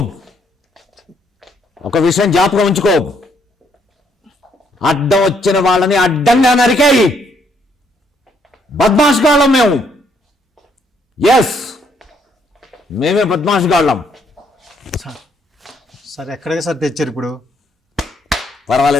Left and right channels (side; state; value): both; normal; correlation 0.70